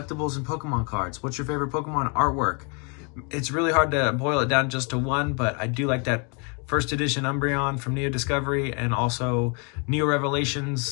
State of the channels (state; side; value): quieter; right; 35.8 dB